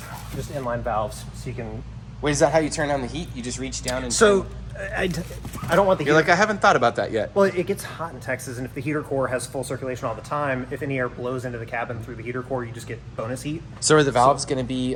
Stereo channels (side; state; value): both; identical; correlation 1.00